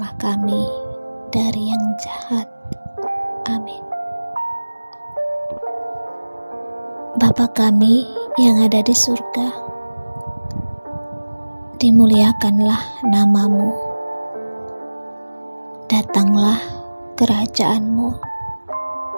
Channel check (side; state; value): both; inverted; correlation -1.00